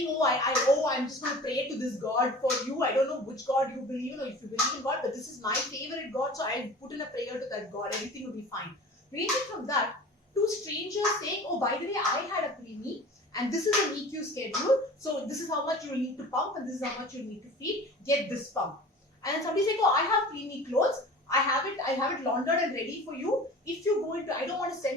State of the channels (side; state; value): both; normal; correlation 0.40